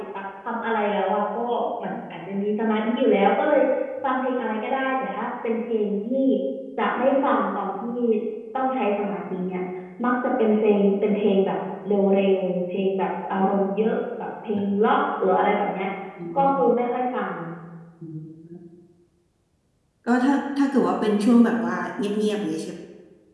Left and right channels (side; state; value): both; identical; correlation 1.00